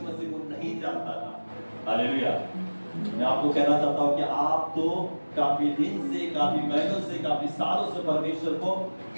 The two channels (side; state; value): both; inverted; correlation -1.00